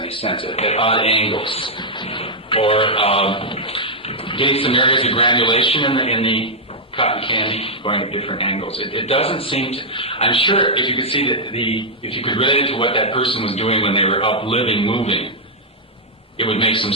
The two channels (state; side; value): normal; both; correlation -0.06